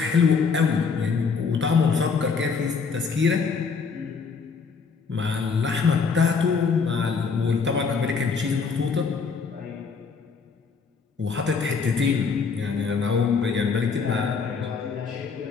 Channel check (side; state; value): right; quieter; 5.4 dB